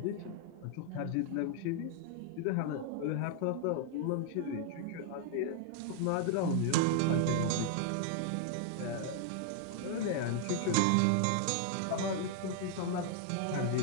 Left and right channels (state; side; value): different; both; correlation 0.00